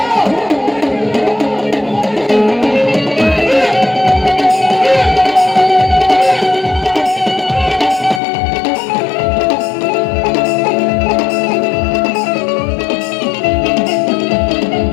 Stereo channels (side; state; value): right; drops out; at 8.2 s